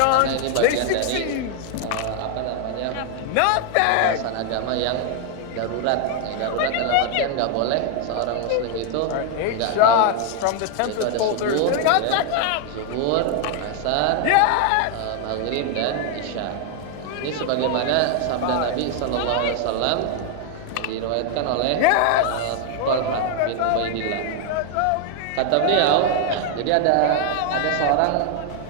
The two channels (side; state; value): both; different; correlation 0.00